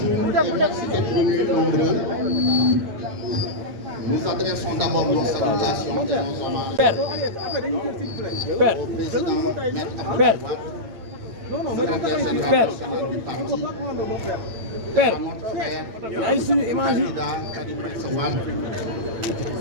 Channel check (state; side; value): late; left; 9.0 ms